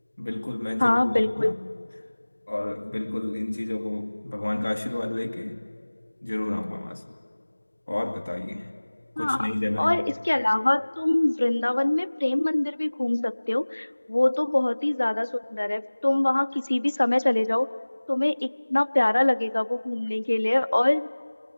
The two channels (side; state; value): both; inverted; correlation -1.00